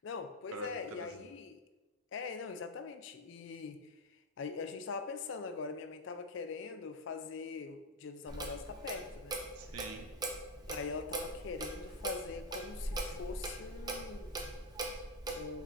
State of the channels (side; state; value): both; normal; correlation 0.08